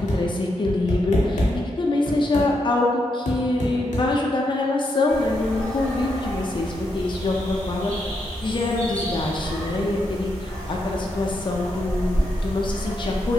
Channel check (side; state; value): both; normal; correlation 0.81